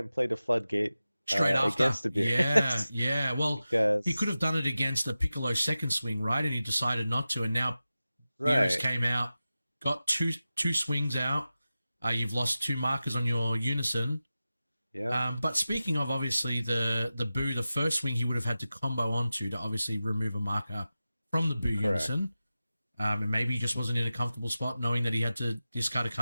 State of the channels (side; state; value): both; inverted; correlation -0.94